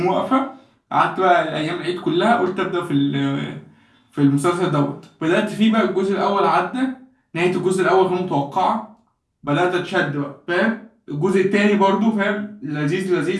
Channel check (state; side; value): identical; both; correlation 1.00